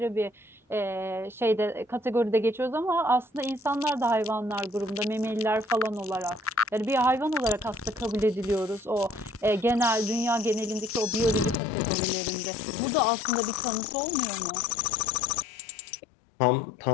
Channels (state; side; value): drops out; right; at 11.6 s